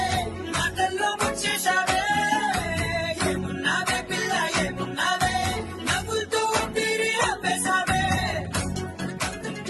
మాటల్లో వచ్చేశావే ఏమున్నావే పిల్ల ఏమున్నావే నవ్వులతో ఊపిరి ఆపేశావే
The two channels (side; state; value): both; identical; correlation 1.00